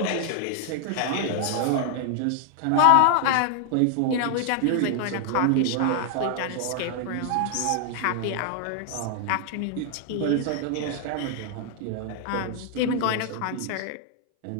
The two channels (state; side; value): different; both; correlation 0.00